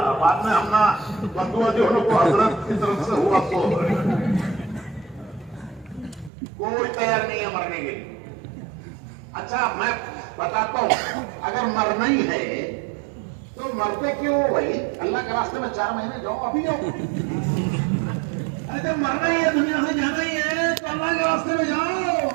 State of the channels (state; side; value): drops out; left; at 6.3 s